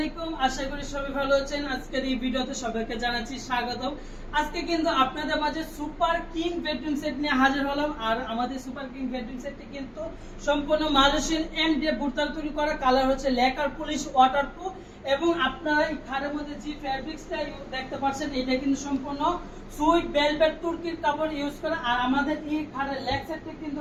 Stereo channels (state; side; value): identical; both; correlation 1.00